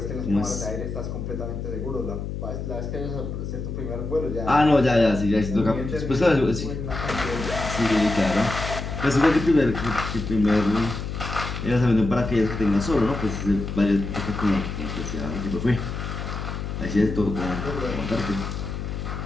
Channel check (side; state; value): left; noise; hum, 5 dB below the sound